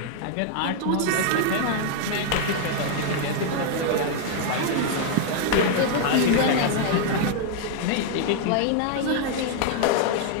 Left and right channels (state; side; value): different; both; correlation 0.00